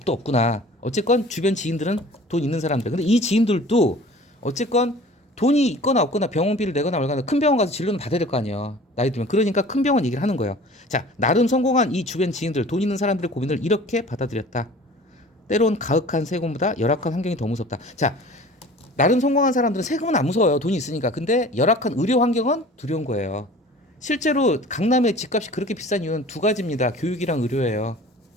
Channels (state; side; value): normal; both; correlation 0.44